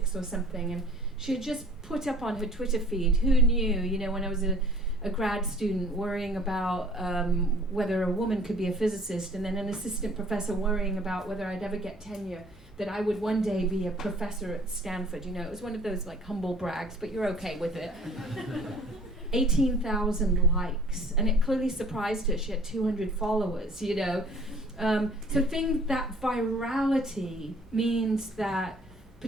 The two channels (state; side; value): normal; both; correlation 0.53